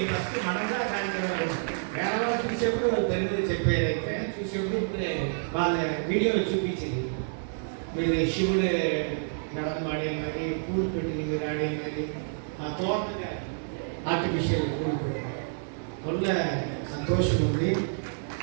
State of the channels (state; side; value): silent; left; digital silence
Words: ఫస్ట్ మనంగా కార్యక్రమాలు వేరే వాళ్ళు చూసేప్పుడు వాళ్ళు తెలుగులో చెప్పారైతే చూసేప్పుడు ఇప్పుడే వాళ్ళ వీడియోలో చూపించింది. మీరు శివుడు నడమ ఆడేది మరి, పూలు పెట్టింది మీరు ఆడేది మరి, ఆ తోటగా ఆర్టిఫిషియల్ పూలు పెట్టింది. వల్ల సంతోషం ఉంది.